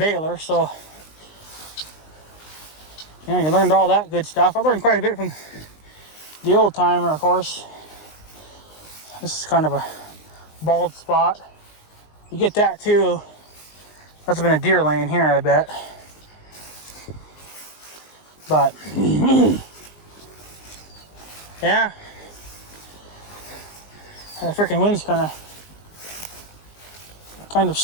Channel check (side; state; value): right; late; 19 ms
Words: So, you learned all that good stuff. I learned quite a bit from the old timer, of course. This is kind of a bald spot. You get that too. Must have been a deer laying here, I bet. But yeah, the freaking wind's kind of